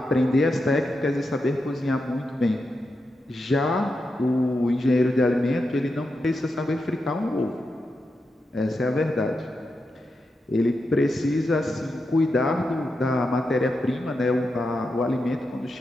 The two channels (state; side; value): normal; both; correlation 0.87